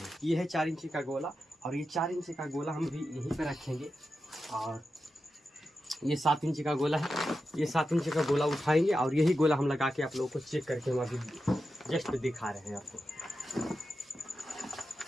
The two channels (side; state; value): both; normal; correlation 0.90